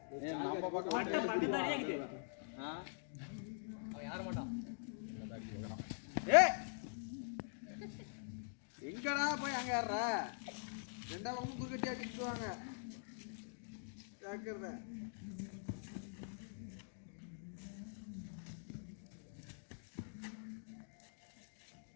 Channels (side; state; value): right; silent; digital silence